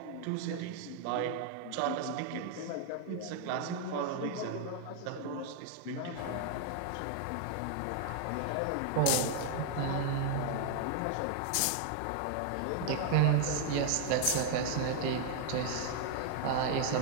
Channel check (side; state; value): both; different; correlation 0.00